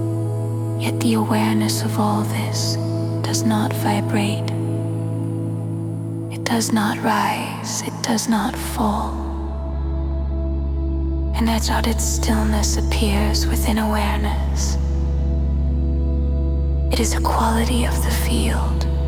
Yet the awareness of all this does not vibrate. It does not rise. It does not fall. An uncharted stillness appears within awareness. It is a quality of the field,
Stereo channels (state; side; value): identical; both; correlation 1.00